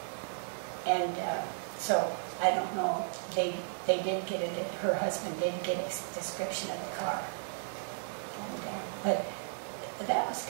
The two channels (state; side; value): silent; left; 55 dB below the other